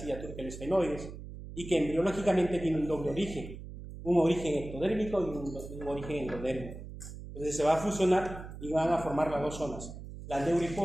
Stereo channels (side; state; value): right; noise; hum, 12 dB below the sound